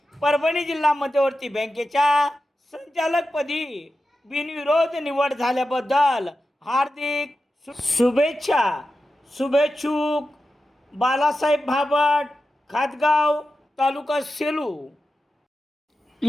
परभणी जिल्हा मध्यवर्ती बँकेच्या संचालकपदी बिनविरोध निवड झाल्याबद्दल हार्दिक शुभेच्छा. शुभेच्छुक बालासाहेब भाबट, खातगाव, तालुका सेलू.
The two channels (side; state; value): both; normal; correlation 0.92